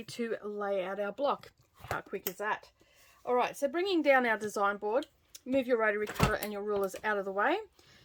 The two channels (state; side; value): identical; both; correlation 1.00